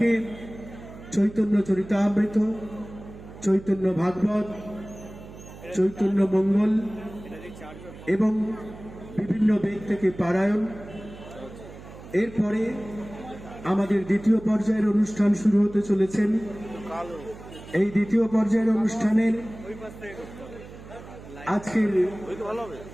চৈতন্য চরিতামৃত, চৈতন্য ভাগবত, চৈতন্য মঙ্গল এবং বিভিন্ন বেদ থেকে পারায়ণ। এরপরে আমাদের দ্বিতীয় পর্যায়ের অনুষ্ঠান শুরু হতে চলেছেন। এই দ্বিতীয় পর্যায়ের অনুষ্ঠানের আজকের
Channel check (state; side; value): noise; right; hum, 16 dB below the sound